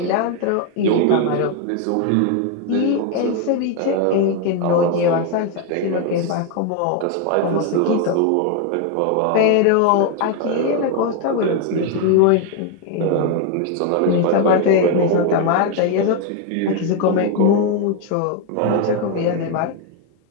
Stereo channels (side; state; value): both; different; correlation 0.01